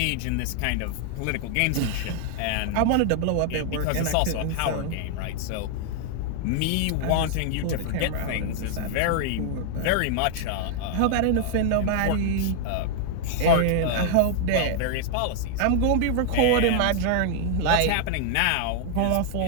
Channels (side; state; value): both; different; correlation 0.00